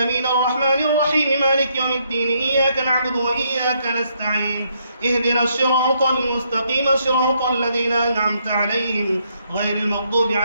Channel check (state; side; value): inverted; both; correlation -0.73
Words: الرحمن الرحيم مالك يوم الدين إياك نعبد وإياك نستعين اهدنا الصراط المستقيم صراط الذين أنعمت عليهم غير المغضوب